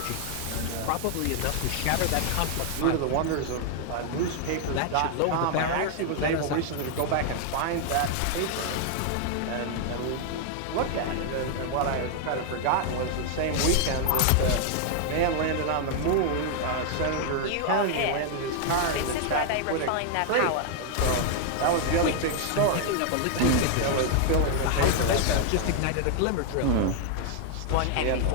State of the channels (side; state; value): both; different; correlation 0.00